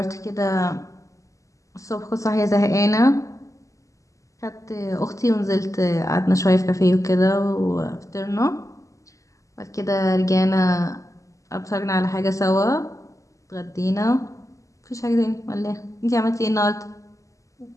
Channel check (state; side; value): late; right; 0.16 ms